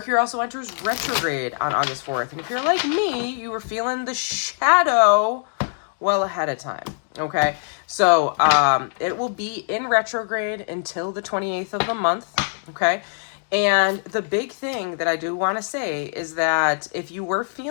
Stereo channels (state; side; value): silent; right; digital silence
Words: also enters retrograde on August 4th. And if you're like me, you were feeling the shadow well ahead of time, okay? So, it will be in retrograde until the 28th of the month, okay? And the big thing that I do want to say is that if you were